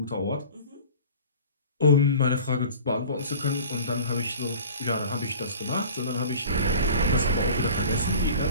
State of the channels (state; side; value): inverted; both; correlation -0.43